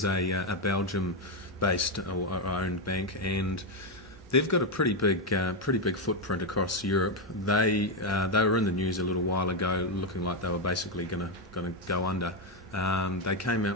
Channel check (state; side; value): normal; both; correlation 0.05